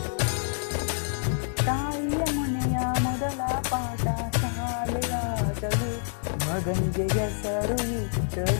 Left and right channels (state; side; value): silent; right; digital silence